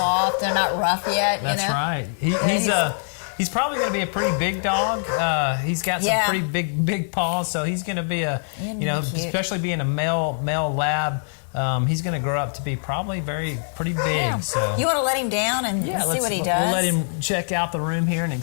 They're not rough yet. That's right. He's probably going to be a pretty big dog. He's got some pretty big paws, so he's going to be especially being a male lab. He's going to grow up to be probably pretty big. Yeah. So you want to let him down and see what he does? We'll let him check out the room here and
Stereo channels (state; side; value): silent; right; digital silence